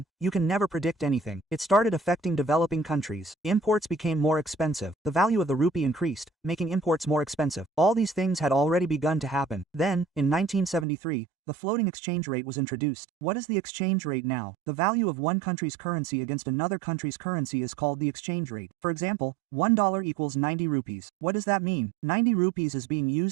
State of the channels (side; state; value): left; drops out; at 10.9 s